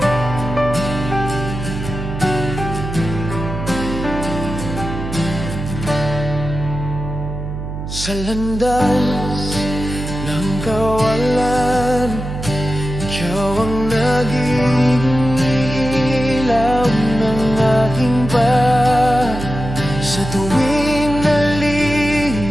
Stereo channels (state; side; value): noise; right; hum, 7 dB below the sound